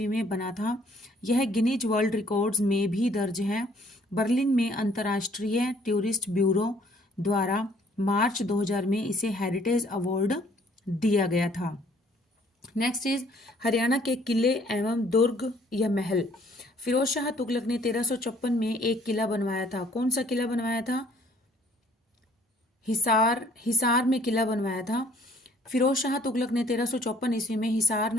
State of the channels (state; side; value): normal; both; correlation 0.60